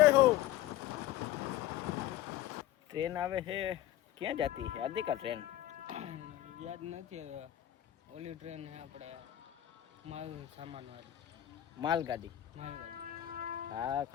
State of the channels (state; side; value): quieter; right; 13.3 dB